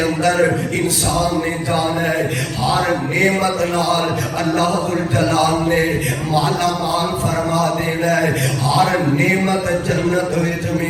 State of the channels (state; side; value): identical; both; correlation 1.00